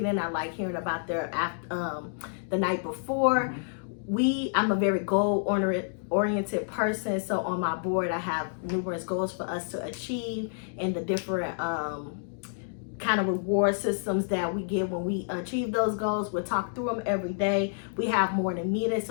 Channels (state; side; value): silent; right; digital silence